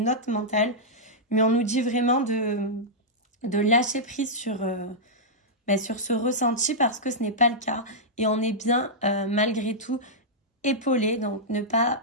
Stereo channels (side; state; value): both; normal; correlation -0.10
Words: mental. Mais on nous dit vraiment de lâcher prise sur ce ressenti parce que ce n'est pas le cas. Et on est bien, malgré tout, épaulé. Donc ne pas